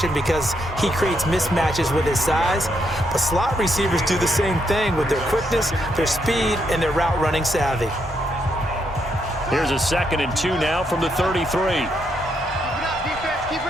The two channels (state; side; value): normal; both; correlation 0.77